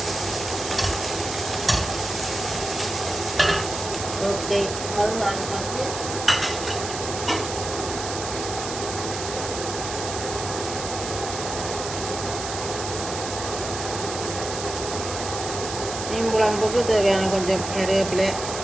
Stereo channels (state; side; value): noise; right; hiss, 7 dB below the sound